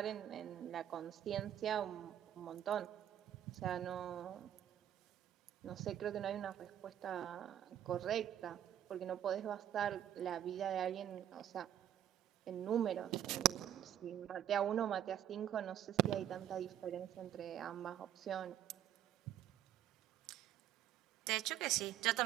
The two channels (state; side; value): quieter; left; 11.1 dB